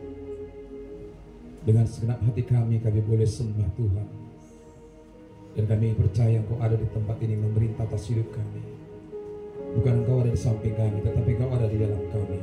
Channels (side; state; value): both; identical; correlation 1.00